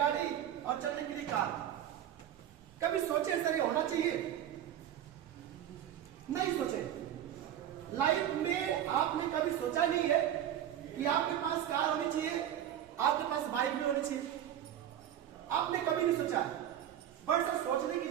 और चलने के लिए कार, कभी सोचे सर ये होना चाहिए? नहीं सोचे। लाइफ में आपने कभी सोचा नहीं है कि आपके पास कार होनी चाहिए, आपके पास बाइक भी होनी चाहिए? आपने कभी नहीं सोचा है, बट सर सोचने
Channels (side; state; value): left; quieter; 10.8 dB